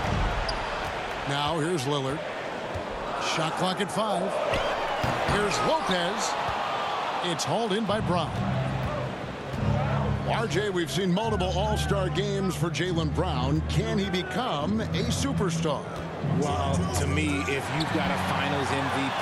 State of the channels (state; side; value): identical; both; correlation 1.00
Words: Now here's Lillard. Shot clock at 5. Here's Lopez. It's hauled in by Brown. RJ, we've seen multiple all-star games for Jaylen Brown. Can he become a superstar? Well, to me, if you've got a Finals